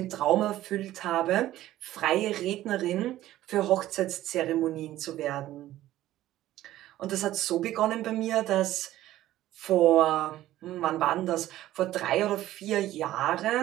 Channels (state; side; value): quieter; left; 14.4 dB